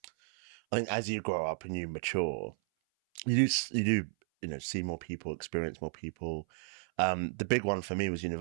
think as you grow up and you mature, you do see more people, experience more people. The big one for me was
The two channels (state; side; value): silent; left; 55 dB below the other